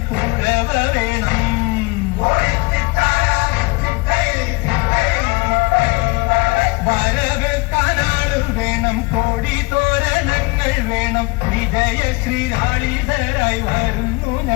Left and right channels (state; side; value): quieter; right; 26.2 dB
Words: കുഴവ വേണം. വരവേൽക്കാനാള് വേണം, കോടി തോരണങ്ങൾ വേണം. വിജയശ്രീലാളിതരായി വരുന്നു